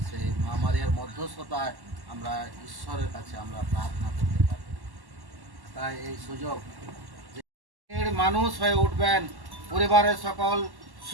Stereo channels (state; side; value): late; left; 1.1 ms